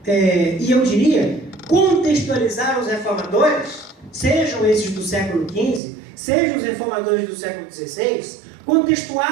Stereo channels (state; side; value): drops out; left; at 5.8 s